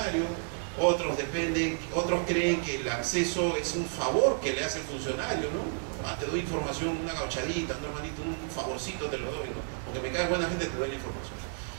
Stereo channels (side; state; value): left; silent; 57 dB below the other